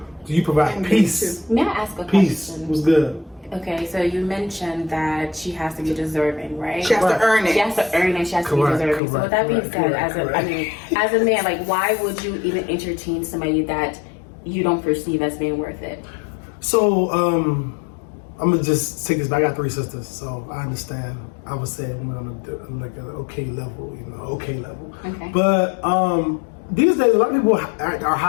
do you provide peace? May I ask a peace question? Was good. Okay, so you mentioned that she has to be deserving, right? She has to earn it. She has to earn it. She has to be deserving. So with that being said, as a man, like, why would you even entertain somebody that you don't perceive as being worth it? So I'm gonna just take this back. I got 3 sisters, so I understand. I would say I'm on an okay level, Okay. But these days, a lot of people are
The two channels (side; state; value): right; drops out; at 9.0 s